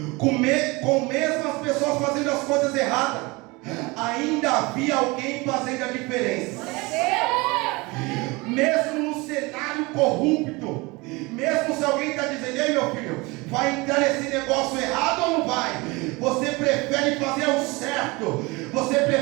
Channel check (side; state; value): left; quieter; 24.5 dB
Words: com mesmo as pessoas fazendo as coisas erradas, ainda havia alguém fazendo a diferença. Mesmo no cenário corrupto, mesmo se alguém está dizendo: ei meu filho, vai entrar nesse negócio errado ou não vai? Você prefere fazer o certo, você